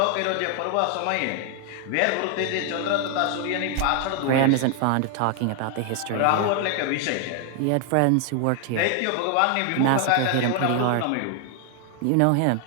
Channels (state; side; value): different; both; correlation 0.00